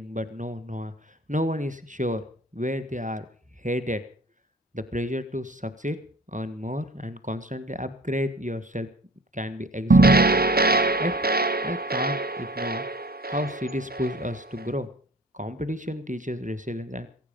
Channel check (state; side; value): normal; both; correlation 0.46